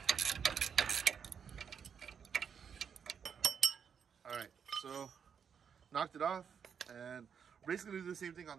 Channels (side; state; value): left; quieter; 7.1 dB